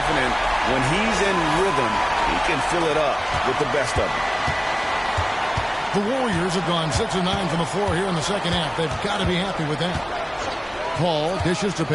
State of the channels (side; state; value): both; identical; correlation 1.00